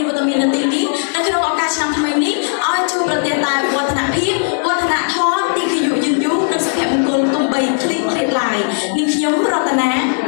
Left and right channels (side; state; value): right; silent; 67 dB below the other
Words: នវត្តមាននៅទីនេះនៅក្នុងឱកាសឆ្នាំថ្មីនេះឲ្យជួយប្រទានតែវឌ្ឍនភាពវឌ្ឍនធម៌ទីគយុយឺនយូរនិងសុភមង្គលទំបីឃ្លីឃ្លាតឡាយនាងខ្ញុំរតនា